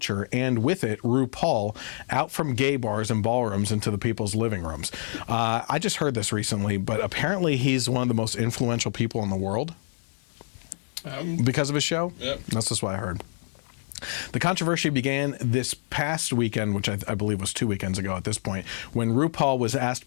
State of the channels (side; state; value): right; silent; digital silence